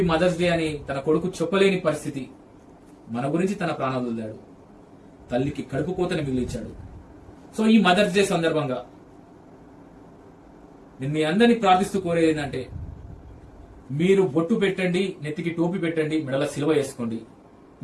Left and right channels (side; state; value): both; identical; correlation 1.00